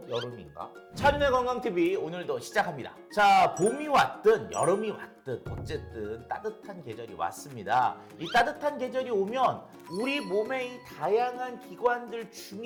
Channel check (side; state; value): both; identical; correlation 1.00